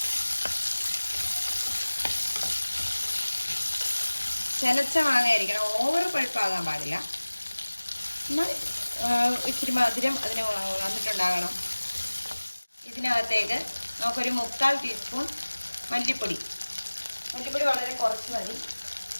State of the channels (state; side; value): inverted; both; correlation -1.00